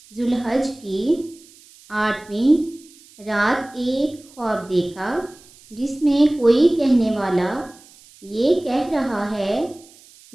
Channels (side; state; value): right; noise; hiss, 25 dB below the sound